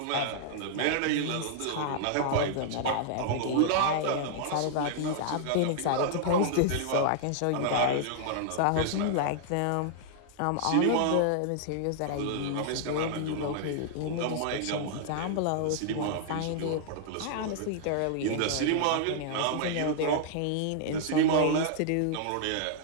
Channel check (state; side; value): different; both; correlation -0.01